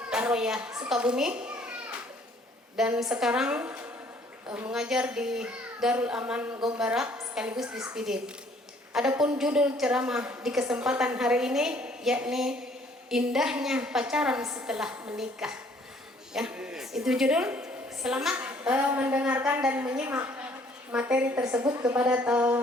Ar-Royah Sukabumi dan sekarang mengajar di Darul Aman Gombara sekaligus di Spidit. Adapun judul ceramah di kesempatan hari ini yakni indahnya pacaran setelah menikah. Ya, itu judul. Selamat mendengarkan dan menyimak materi tersebut. Kepada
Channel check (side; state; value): both; normal; correlation 0.60